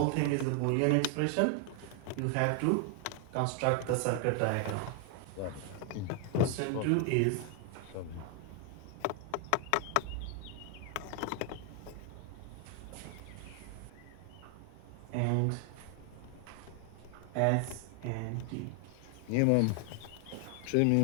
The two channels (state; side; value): different; both; correlation 0.00